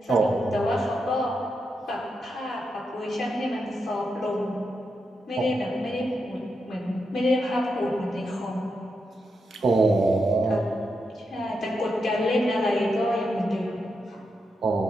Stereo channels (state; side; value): normal; both; correlation 0.85